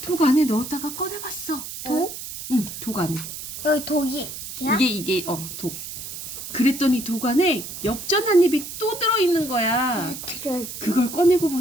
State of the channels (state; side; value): noise; right; hiss, 9 dB below the sound